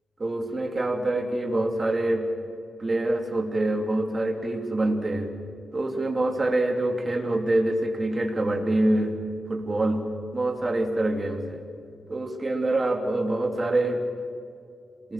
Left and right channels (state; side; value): normal; both; correlation 0.94